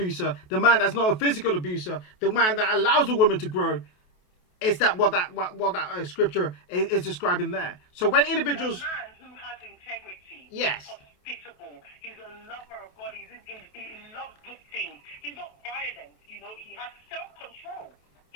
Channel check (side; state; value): right; late; 28 ms